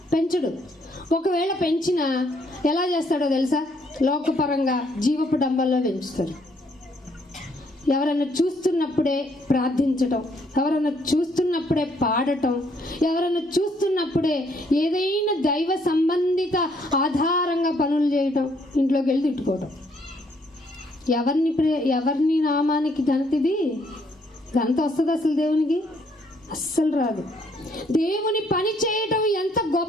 పెంచడు. ఒకవేళ పెంచినా ఎలా చేస్తాడో తెలుసా? లోకపరంగా జీవపు డంబాల్లో పెంచుతాడు. ఎవరైనా చూస్తున్నప్పుడే ప్రార్థించటం, ఎవరైనా చూస్తున్నప్పుడే పాడటం, ఎవరైనా చూస్తున్నప్పుడే ఏదైనా దైవ సంబంధిత ఆధారంగా పనులు చేయటం, ఇంట్లోకి వెళ్ళి తిట్టుకోవటం. ఎవరిని నామానికి ఘనతిది? ఘనత వస్తుంది అసలు దేవునికి? అస్సలు రాదు. దేవుని పని చేయటం ఎంత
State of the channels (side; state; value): both; normal; correlation 0.69